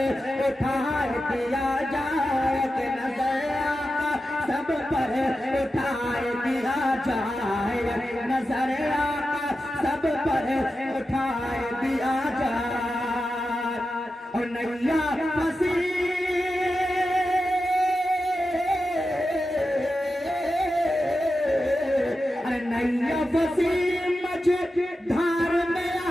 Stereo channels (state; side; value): normal; both; correlation 0.91